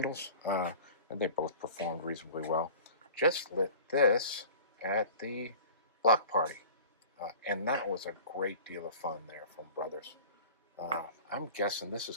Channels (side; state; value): both; inverted; correlation -0.41